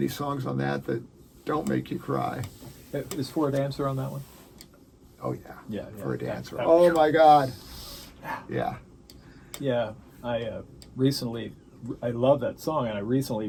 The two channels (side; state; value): both; identical; correlation 1.00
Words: songs on that don't make you cry. Is For a Dancer on that one? Oh yeah. For a Dancer. Oh my God. Yeah. Yeah, I love that song, and I recently